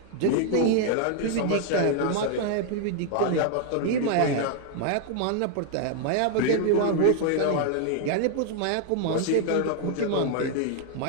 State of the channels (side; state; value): both; different; correlation 0.00